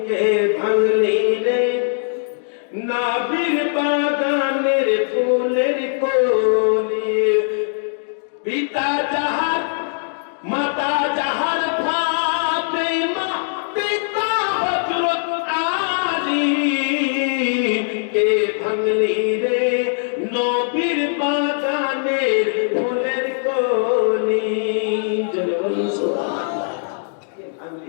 কে ভাঙলি রে নবীর বাগানের ফুলের কলি। পিতা যাহার মাতা যাহার ফাতেমা, পিতা হযরত আলী, কে ভাঙলি রে নবীর বাগানের ফুলের কলি। জোরে বলুন সুবহানাল্লাহ। কে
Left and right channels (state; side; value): silent; right; digital silence